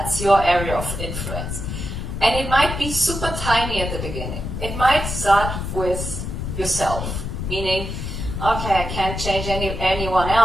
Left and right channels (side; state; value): left; noise; rumble, 5 dB below the sound